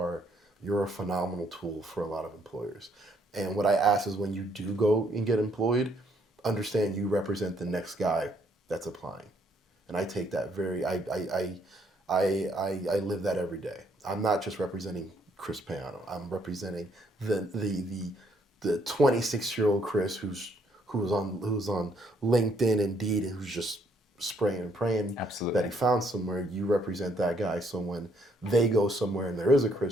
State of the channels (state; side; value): normal; both; correlation 0.70